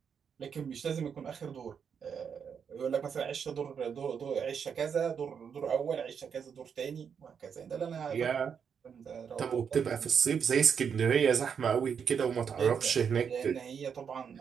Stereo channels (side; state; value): left; quieter; 7.0 dB